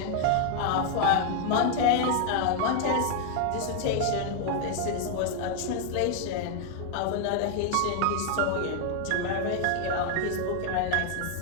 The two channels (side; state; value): both; different; correlation 0.00